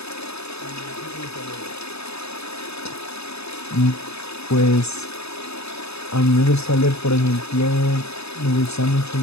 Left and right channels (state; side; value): late; right; 0.79 ms